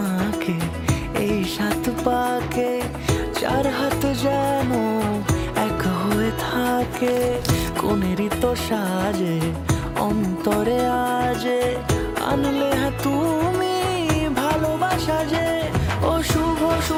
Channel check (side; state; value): both; identical; correlation 1.00